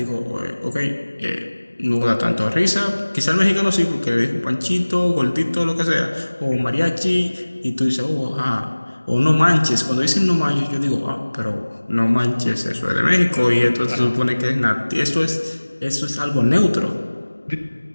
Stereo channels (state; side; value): inverted; both; correlation -1.00